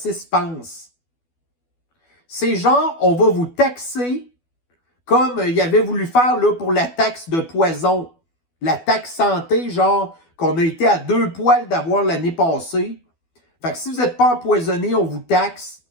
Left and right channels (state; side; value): late; right; 12 ms